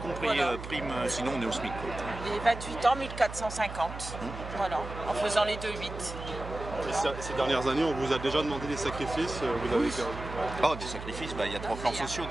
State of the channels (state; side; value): noise; right; hum, 10 dB below the sound